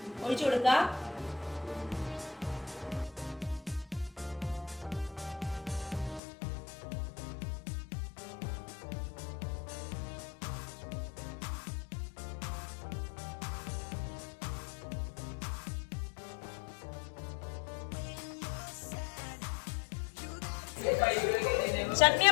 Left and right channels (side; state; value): right; drops out; at 6.2 s